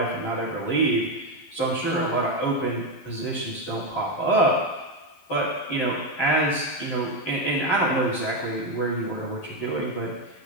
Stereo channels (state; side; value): late; right; 11 ms